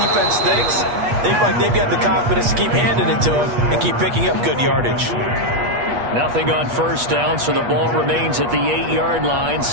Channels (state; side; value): late; left; 8.4 ms